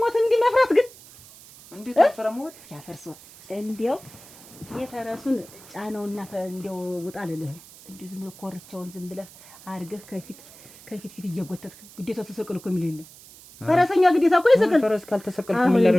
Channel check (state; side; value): noise; right; hiss, 21 dB below the sound